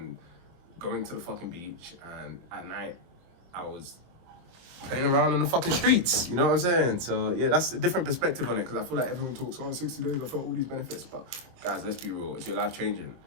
going to the fucking beach, and at night I was playing around in the fucking streets, you know what I'm saying? So yeah, that's a different perspective on it, because I feel like everyone talks, oh, 60 days, I felt all these benefits, but guys, let's be real, is your life changing?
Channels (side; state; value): left; late; 23 ms